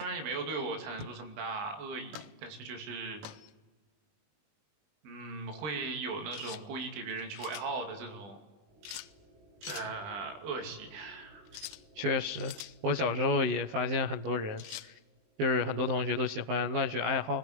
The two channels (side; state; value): left; late; 19 ms